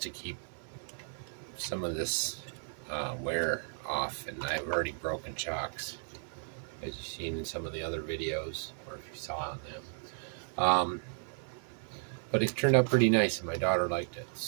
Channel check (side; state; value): left; silent; 55 dB below the other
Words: to keep some of this wear off, and I've already broken shocks, as you've seen in some of the other videos, or if you saw on them. But it turned out pretty nice, and my daughter liked it.